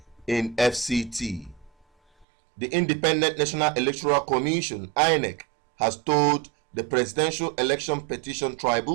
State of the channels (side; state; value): left; drops out; at 2.2 s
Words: in FCT. The Independent National Electoral Commission, INEC, has told the Presidential Election Petition